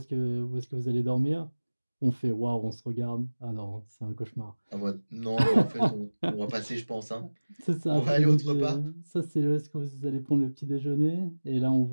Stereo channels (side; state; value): both; inverted; correlation -1.00